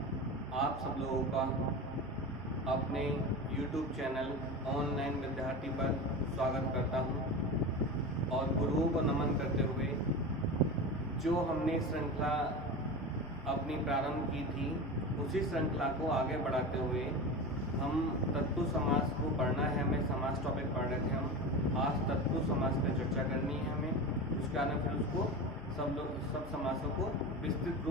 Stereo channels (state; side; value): normal; both; correlation 0.26